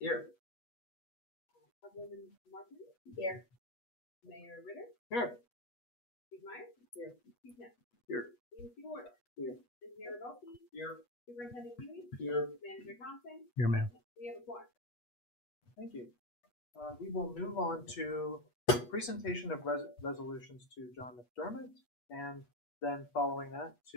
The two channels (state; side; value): late; right; 8.3 ms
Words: Councilwoman Martin. Here. Mayor Ritter. Here. Steve Meyer. Here. Steve Knapp. Here. Steve Ward. Here. Engineer Rodolphe. Here. Superintendent Huey. Here. Manager Thompson. Here, ma'am. We have a quorum. Thank you. We will move on to presentation of resolutions to John McDermott, and then following that